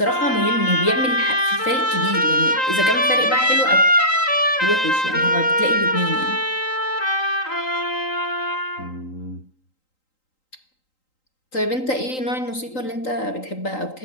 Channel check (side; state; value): right; late; 3.8 ms